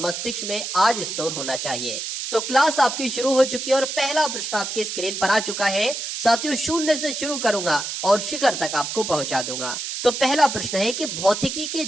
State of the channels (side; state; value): right; noise; hiss, 5 dB below the sound